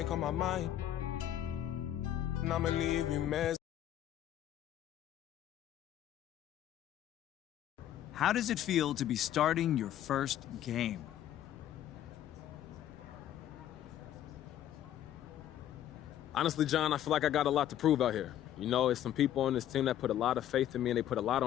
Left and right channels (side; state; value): right; quieter; 11.6 dB